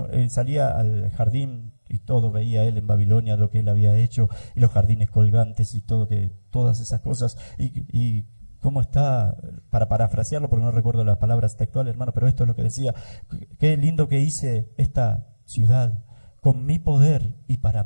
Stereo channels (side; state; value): both; inverted; correlation -1.00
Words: salía al jardín y todo, veía él en Babilonia lo que él había hecho, y los jardines colgantes y todo, todas esas cosas, y cómo está, para parafrasearlo, porque no recuerdo las palabras textuales, hermano, pero esto es lo que decía, qué lindo que hice esta ciudad, con mi poder y para